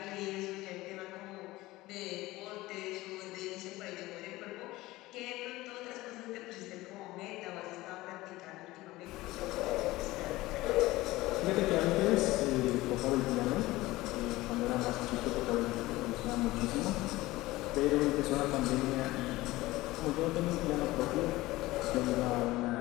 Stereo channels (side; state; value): right; quieter; 18.7 dB